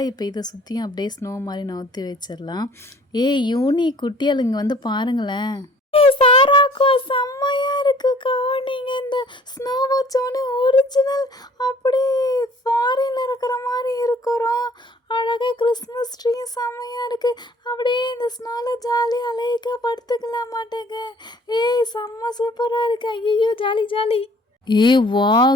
இப்போ இதை சுற்றியும் அப்படியே ஸ்னோ மாதிரி நவுத்தி வச்சிடலாம். யூனி குட்டியால் இங்கே வந்து பாருங்களேன். சாராக்கா, செம்மையா இருக்குக்கா. நீங்கள் இந்த ஸ்னோ வச்சோன்னே ஒரிஜினல் அப்படியே ஃபாரின்ல இருக்கிற மாதிரி இருக்கிறோம். அழகாக கிறிஸ்மஸ் ட்ரீ செம்மையாக இருக்குது. அப்படியே இந்த ஸ்னோவில் ஜாலியாக அலைக்காக படுத்துக்கலாம் மாட்டேங்க. செம்ம சூப்பராக இருக்கு. ஐயோ, ஜாலி ஜாலி. வா,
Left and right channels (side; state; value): both; normal; correlation 0.55